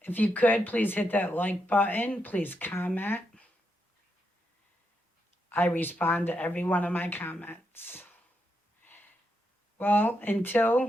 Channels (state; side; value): normal; both; correlation 0.82